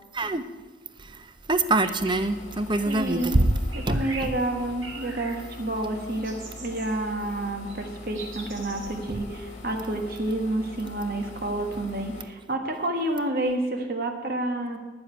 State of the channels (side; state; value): both; normal; correlation 0.50